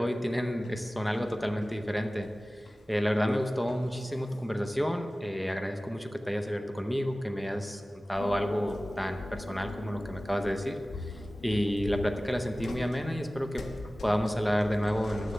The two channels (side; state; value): both; normal; correlation 0.97